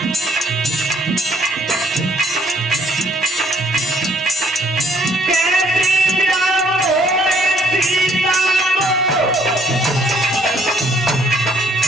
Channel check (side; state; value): both; normal; correlation 0.65